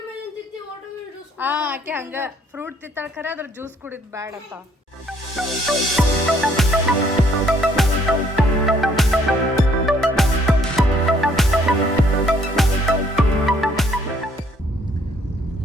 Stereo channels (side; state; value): both; normal; correlation 0.65